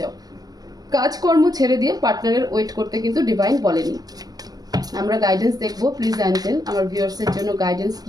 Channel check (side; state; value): left; late; 0.19 ms